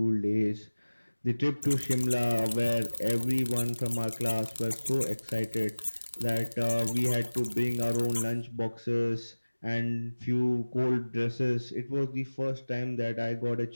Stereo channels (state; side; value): inverted; both; correlation -1.00